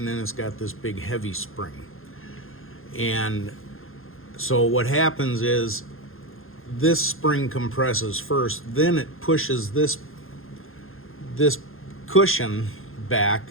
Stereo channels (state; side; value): late; right; 0.60 ms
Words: then it's got this big heavy spring. And so what happens is, this spring compresses first, then it pushes this cushion back.